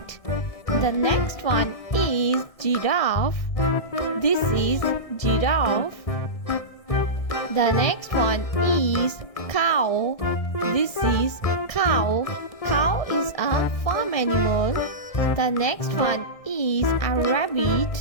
The next one is giraffe. This is giraffe. The next one is cow. This is cow. Cow is a farm animal. The next one is a rabbit.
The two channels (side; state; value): right; late; 1.6 ms